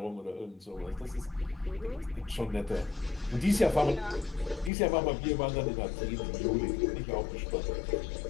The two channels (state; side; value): drops out; right; at 4.7 s